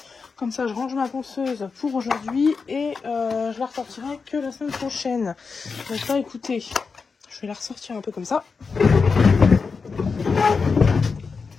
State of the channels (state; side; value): quieter; right; 4.9 dB